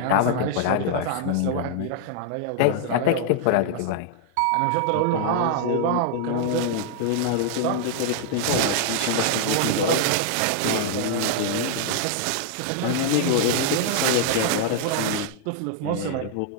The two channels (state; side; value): different; both; correlation -0.01